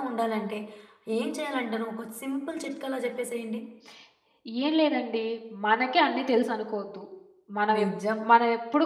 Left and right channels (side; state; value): both; identical; correlation 1.00